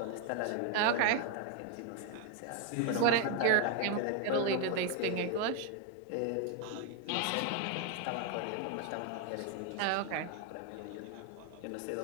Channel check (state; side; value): different; both; correlation 0.01